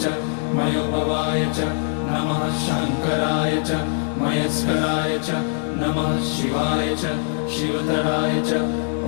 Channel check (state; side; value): silent; right; 64 dB below the other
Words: च मयोभवाय च नमः शङ्कराय च मयस्कराय च नमः शिवाय च शिवतराय च।